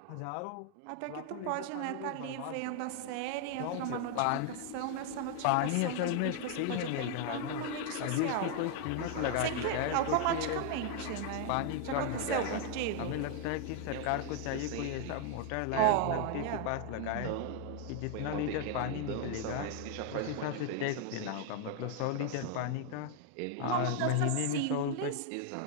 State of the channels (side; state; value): both; different; correlation 0.00